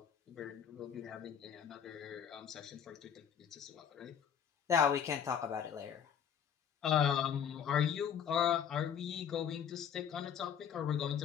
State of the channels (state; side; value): quieter; right; 8.3 dB